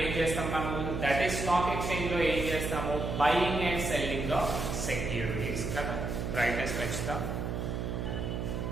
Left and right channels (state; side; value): noise; right; hum, 3 dB below the sound